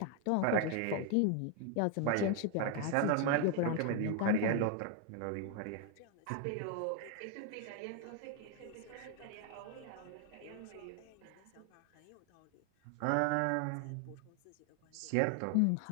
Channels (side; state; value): both; different; correlation 0.01